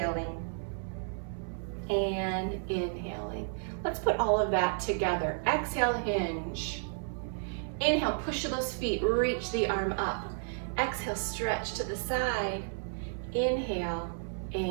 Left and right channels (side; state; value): left; silent; 56 dB below the other